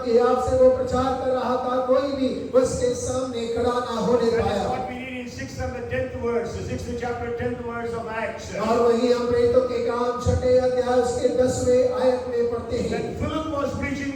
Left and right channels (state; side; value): identical; both; correlation 1.00